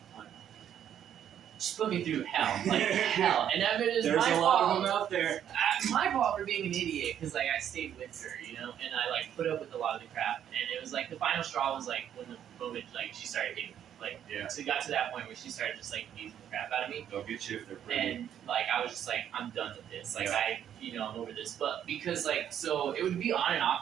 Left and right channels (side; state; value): left; quieter; 9.8 dB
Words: fun. She put me through hell, like hell, and I mean, it's there's my a lot fault. of them out there. My fault for being an idiot because like I stayed with her, you know, and I like put up with a lot of the crap, and it was like the final straw was like when the moment like she started getting like so it got to that point where she started just like beating the crap out of me. They'll get you if they're pretty. And like I was just like I'm done with this, like I'm over this, but because like so it would be on and